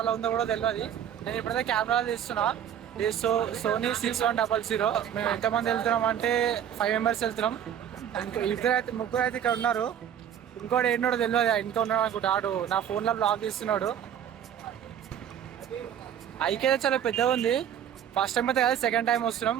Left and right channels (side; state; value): left; quieter; 9.5 dB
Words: ఉందో కూడా తెలియదు. నేను ఇప్పుడైతే కెమెరాలో తీస్తున్నా. ఇది సోనీ 6100. మేము ఎంతమంది వెళ్తున్నాం అంటే 5 మెంబర్స్ వెళ్తున్నాం. ముగ్గురు అయితే ఇక్కడ ఉన్నారు. ఇంకోటి ఏంటో తెలియదు, ఇంకా ఉన్నాడు అనుకుంటా. ఆడు నా ఫోన్లో బ్లాగ్ తీస్తున్నాడు. ఐకే చాలా పెద్దగా ఉంది. ఫస్ట్ టైం అయితే కాదు, సెకండ్ టైం వస్తున్నాం.